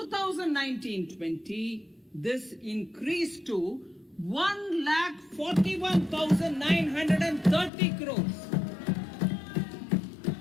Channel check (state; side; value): drops out; right; at 7.7 s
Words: this increased to 1,41,930 crores.